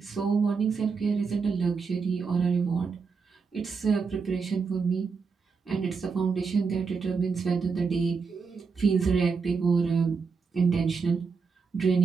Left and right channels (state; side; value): quieter; left; 5.2 dB